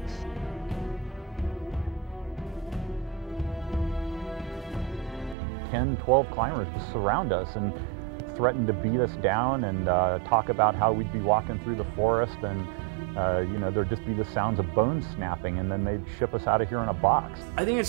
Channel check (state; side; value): drops out; left; at 5.4 s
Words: Ten, 12 climbers just surround us and threaten to beat us down and talk about how we'd be walking through the forest and you know, there'd just be the sounds of bones snapping, and then they'd ship us out of here in a box. I think